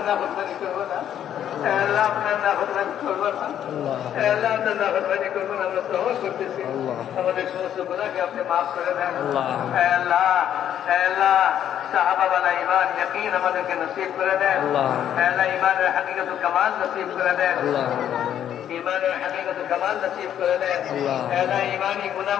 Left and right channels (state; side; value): quieter; right; 10.2 dB